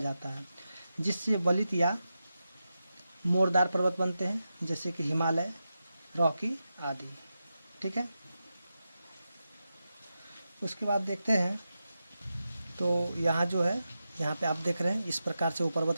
है, जिससे बलित या मोरदार पर्वत बनते हैं, जैसे कि हिमालय, रॉकी आदि, ठीक है। उसके बाद देखते हैं, तो यहाँ जो है, यहाँ पे आप देख रहे हैं इस प्रकार से वो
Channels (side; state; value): both; inverted; correlation -0.90